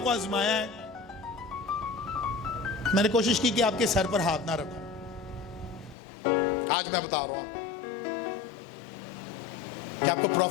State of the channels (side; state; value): right; drops out; at 6.0 s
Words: को आजमाया है, मैंने कोशिश की कि आपके सर पर हाथ ना रखो, आज मैं बता रहा हूं कि आपको